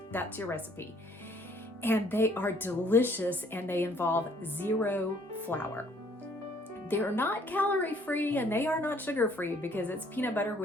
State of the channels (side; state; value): both; normal; correlation 0.61